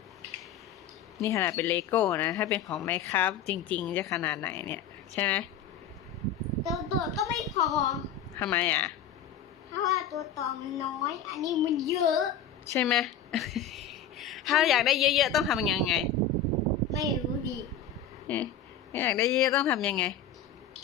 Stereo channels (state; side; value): quieter; right; 7.0 dB